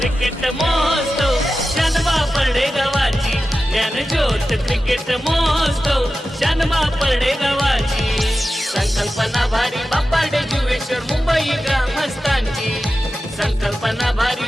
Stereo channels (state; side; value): normal; both; correlation 0.93